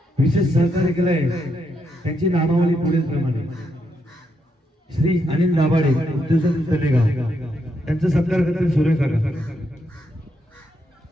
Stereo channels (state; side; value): normal; both; correlation 0.80